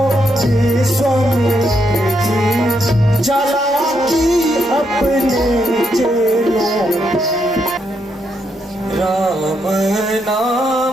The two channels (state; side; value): normal; both; correlation 0.78